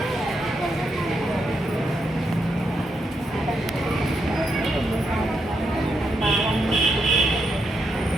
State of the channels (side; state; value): both; normal; correlation 0.81